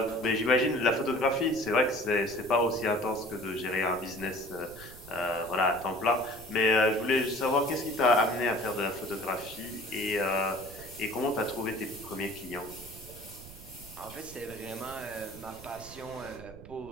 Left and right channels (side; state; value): right; noise; rumble, 17 dB below the sound